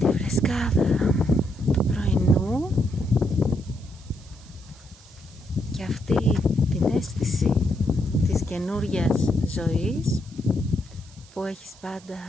φρεσκάδα του πρωινού και αυτή την αίσθηση της καινούριας ζωής που έχεις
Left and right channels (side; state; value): right; noise; hiss, 25 dB below the sound